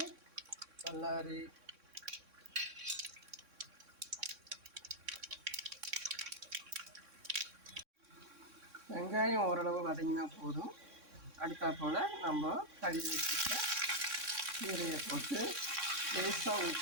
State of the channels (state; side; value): late; left; 3.6 ms